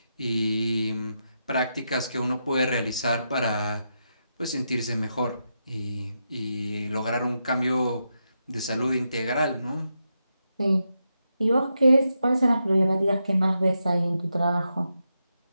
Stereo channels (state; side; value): inverted; both; correlation -0.85